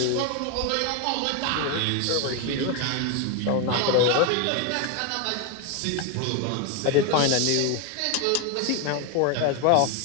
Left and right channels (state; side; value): different; both; correlation 0.01